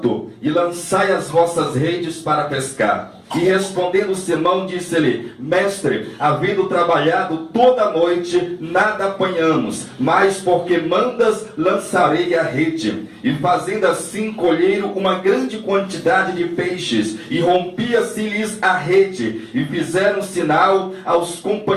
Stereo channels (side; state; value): both; identical; correlation 1.00